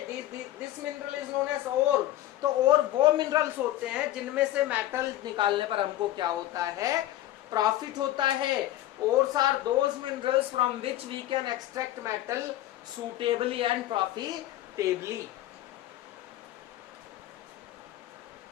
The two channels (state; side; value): quieter; right; 14.3 dB